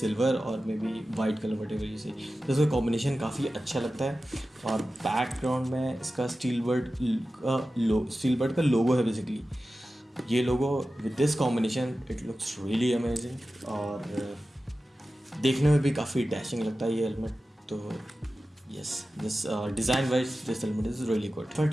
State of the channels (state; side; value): normal; both; correlation 0.94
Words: और maybe white colour whatever you see. तो इसका कॉम्बिनेशन काफ़ी अच्छा लगता है। और बैकग्राउंड में इसका स्टीलबर्ड का लोगो है बेसिकली। ये लोगो with this combination it looks really amazing, और देखने में भी काफ़ी डैशिंग लगता है ये हेलमेट। तो yes, this design wise this helmet is really good. फट